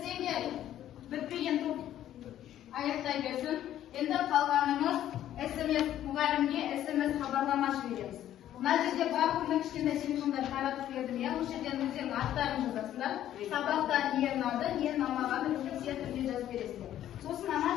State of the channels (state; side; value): quieter; right; 11.9 dB